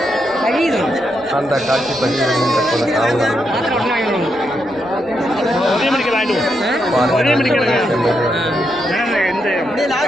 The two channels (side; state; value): right; noise; rumble, 26 dB below the sound